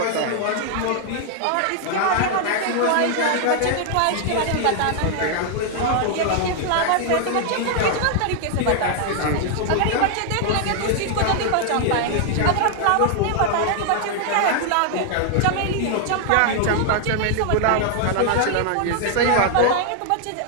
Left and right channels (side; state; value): both; different; correlation 0.00